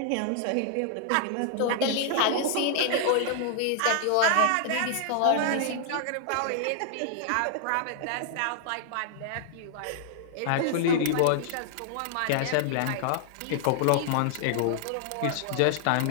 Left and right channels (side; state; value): both; different; correlation -0.01